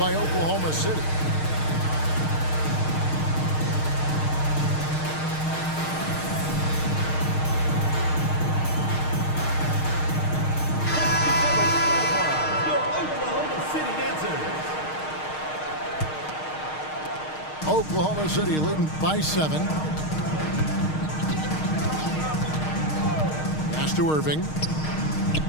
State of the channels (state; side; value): late; right; 6.5 ms